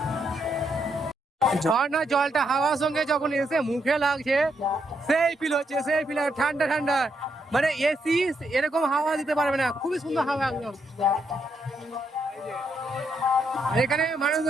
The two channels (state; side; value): normal; both; correlation 0.78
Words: ঝর্ণা জলটা হাওয়ার সঙ্গে যখন এসে মুখে লাগছে সেই ফিল হচ্ছে, সেই ফিল ঠান্ডা ঠান্ডা, মানে এসি এরকম হাওয়া দিতে পারবে না, খুবই সুন্দর হাওয়া একদম। এখানে